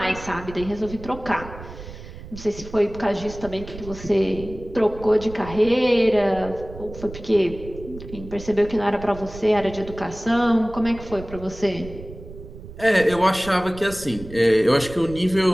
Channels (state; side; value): noise; right; rumble, 14 dB below the sound